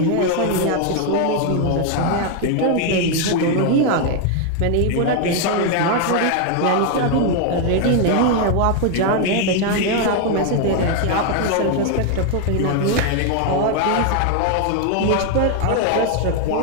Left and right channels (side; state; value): both; different; correlation 0.00